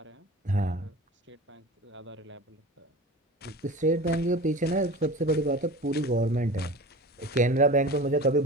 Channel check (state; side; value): normal; both; correlation 0.35